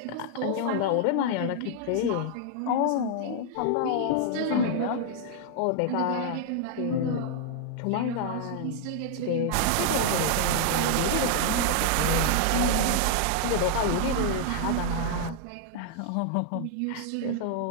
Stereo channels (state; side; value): different; both; correlation -0.01